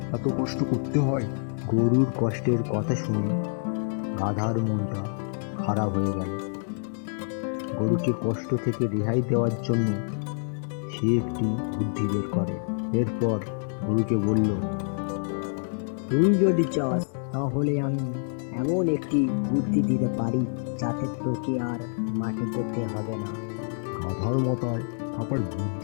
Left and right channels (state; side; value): silent; right; digital silence